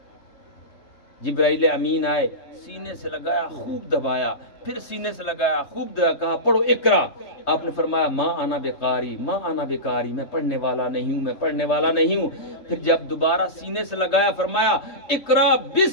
جبرائیل امین آئے، سینے سے لگایا، خوب دبایا، پھر سینے سے لگایا، خوب دبایا، کہا پڑھو اقرا۔ آپ نے فرمایا ما انا بقاری، ما انا بقاری، میں پڑھنے والا نہیں ہوں، میں پڑھنے والا نہیں ہوں۔ پھر جب دوبارہ سینے سے لگایا فرمایا اقرا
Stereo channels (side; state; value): right; late; 3.2 ms